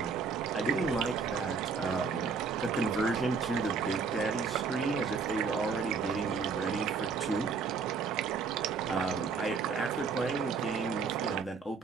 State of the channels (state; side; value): quieter; left; 5.2 dB